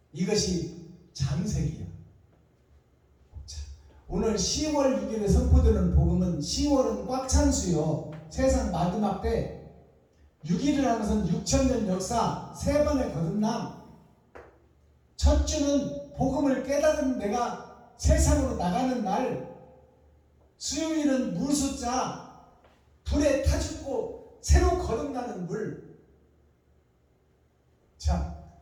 이것이 장색이야. 자, 오늘 10월 6일에 선포되는 복음은 10월은 꽉 찬 수요. 세상 마지막 때 6일을 하는 것은 6,000년 역사 3번의 거듭남. 첫 주는 복음을 깨달은 내가 세상으로 나가는 날, 수요일은 물숫자 불에 타 죽고 새로 거듭나는 물. 자,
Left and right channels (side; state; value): both; identical; correlation 1.00